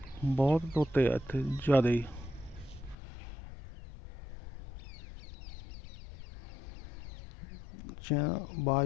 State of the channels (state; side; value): drops out; right; at 3.0 s